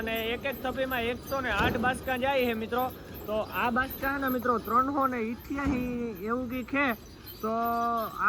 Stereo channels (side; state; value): both; identical; correlation 1.00